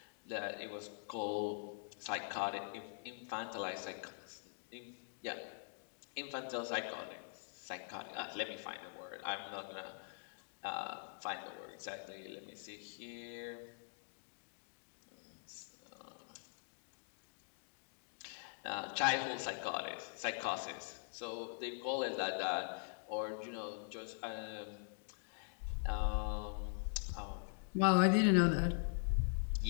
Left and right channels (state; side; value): silent; right; digital silence